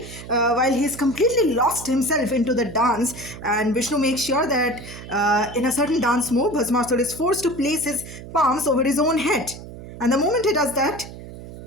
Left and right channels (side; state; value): right; noise; hum, 14 dB below the sound